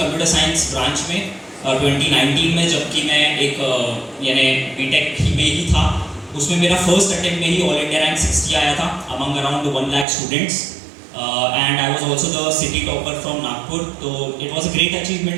साइंस ब्रांच में 2019 में, जबकि मैं एक यानी बीटेक में ही था. उसमें मेरा फर्स्ट अटेम्प्ट में ही ऑल इंडिया रैंक 60 आया था among around 1 lakh students, and I was also the city topper from Nagpur. तो it was a great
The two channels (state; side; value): drops out; left; at 10.1 s